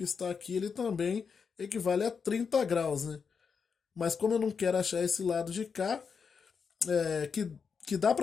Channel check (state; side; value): quieter; right; 5.9 dB